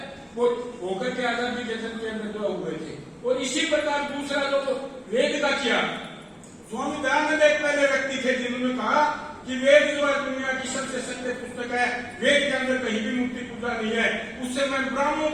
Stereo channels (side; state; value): both; identical; correlation 1.00